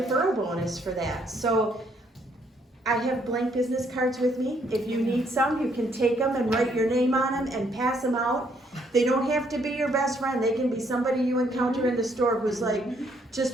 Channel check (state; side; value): normal; both; correlation 0.69